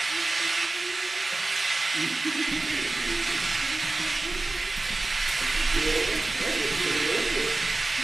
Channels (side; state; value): left; quieter; 3.1 dB